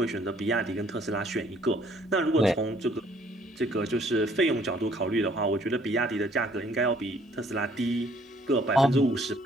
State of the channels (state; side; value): normal; both; correlation 0.61